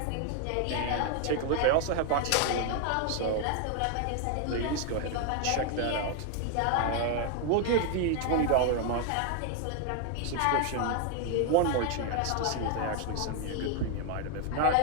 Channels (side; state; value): both; different; correlation 0.00